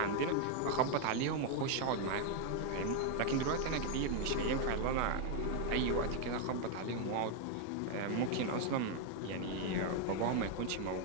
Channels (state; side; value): different; both; correlation 0.00